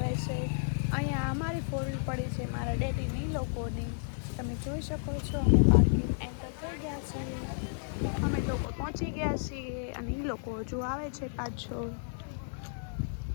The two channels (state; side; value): silent; right; digital silence